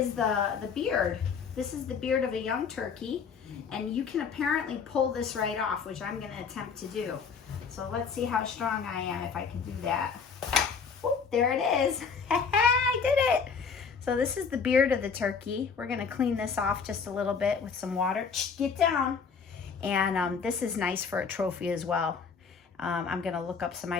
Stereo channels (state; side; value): quieter; right; 5.9 dB